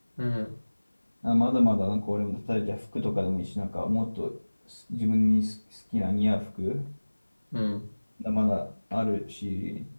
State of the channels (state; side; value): inverted; both; correlation -1.00